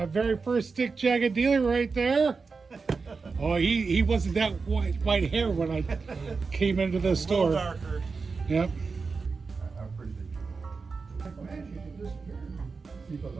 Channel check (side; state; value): left; quieter; 4.6 dB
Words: very first stick jacket dealer right there. Oh, he wasn't that white hair when I came into the store. A little darker. Yep.